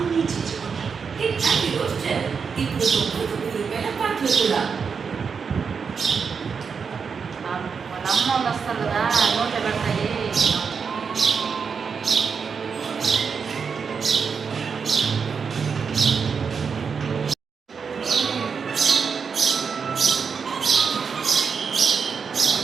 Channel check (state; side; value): quieter; left; 5.9 dB